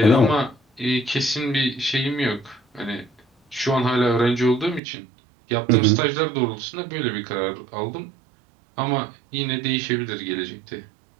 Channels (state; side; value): drops out; left; at 4.8 s